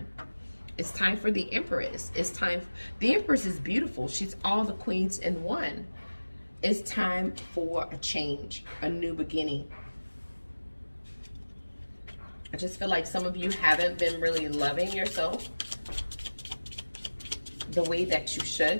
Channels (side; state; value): both; inverted; correlation -1.00